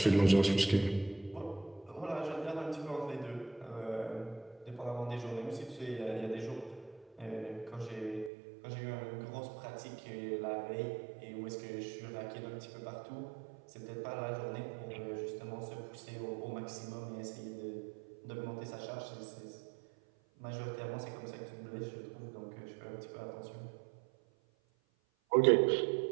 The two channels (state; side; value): drops out; left; at 8.3 s